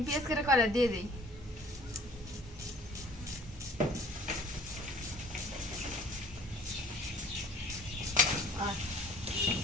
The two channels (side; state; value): both; normal; correlation 0.51